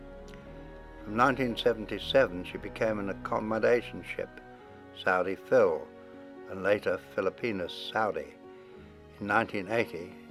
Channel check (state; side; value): identical; both; correlation 1.00